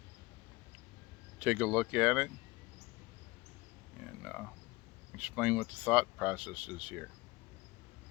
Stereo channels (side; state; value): right; quieter; 21.9 dB